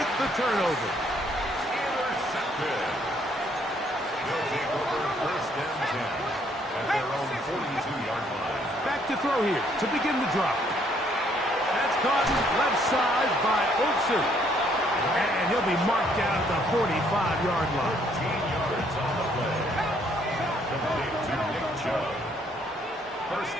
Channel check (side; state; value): both; normal; correlation 0.67